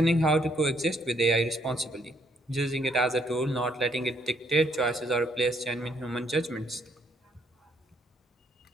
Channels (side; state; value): both; normal; correlation 0.69